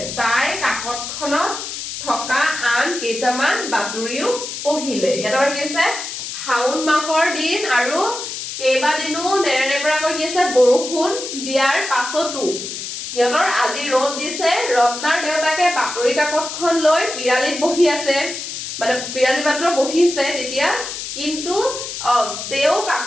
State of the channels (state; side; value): noise; left; hiss, 7 dB below the sound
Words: তাই কাকতখনত থকা আন কেইটামান বাতৰিও পঢ়িলে ইয়াত আমাৰ কি আছে শাওণ মাহৰ দিন আৰু কেইবাদিনো নেৰানেপেৰাকৈ কি আছে বৰষুণ দিয়াৰ পাছতো সিহঁতৰ আজি ৰ'দ দিছে ৰত্নাৰ দেউতাকে বাতৰি কাকতখন লৈ পিৰালিত বহি আছে মানে পিৰালি মাত্ৰ বহিছে তেতিয়া কিন্তু তেওঁ